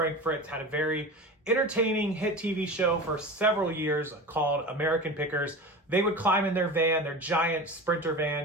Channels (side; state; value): both; normal; correlation 0.31